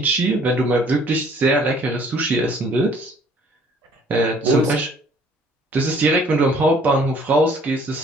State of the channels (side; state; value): both; normal; correlation 0.58